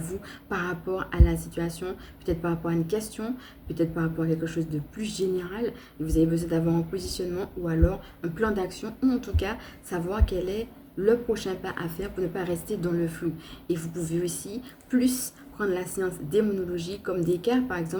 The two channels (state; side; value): identical; both; correlation 1.00